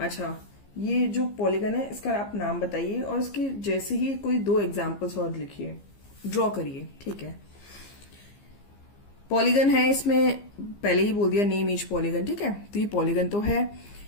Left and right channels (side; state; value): right; late; 15 ms